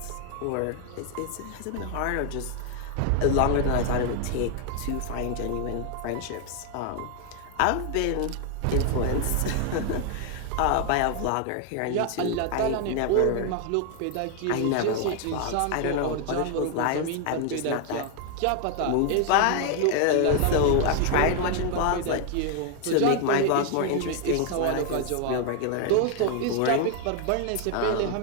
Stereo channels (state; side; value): different; both; correlation 0.00